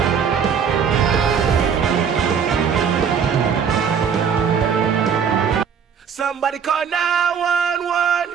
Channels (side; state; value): left; quieter; 7.1 dB